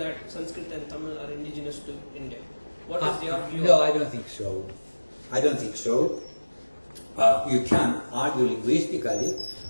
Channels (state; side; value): inverted; both; correlation -1.00